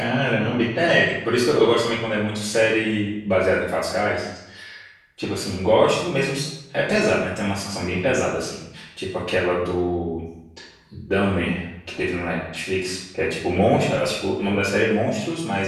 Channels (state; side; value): identical; both; correlation 1.00